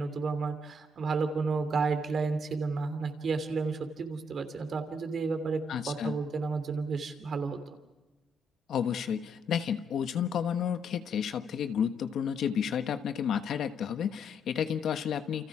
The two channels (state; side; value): normal; both; correlation 0.73